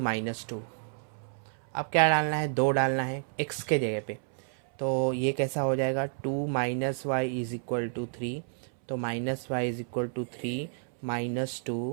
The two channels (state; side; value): silent; left; 58 dB below the other